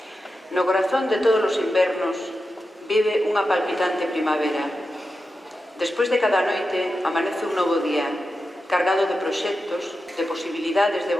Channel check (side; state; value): both; normal; correlation 0.90